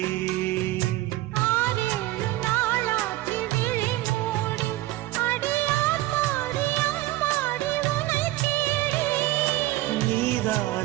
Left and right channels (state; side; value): quieter; left; 17.2 dB